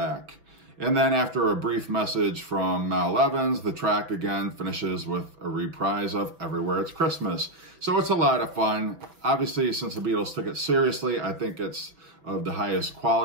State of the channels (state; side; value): late; left; 6.0 ms